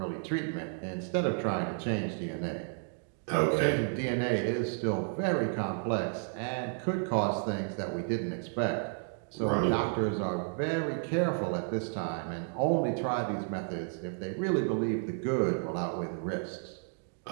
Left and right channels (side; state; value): left; silent; 56 dB below the other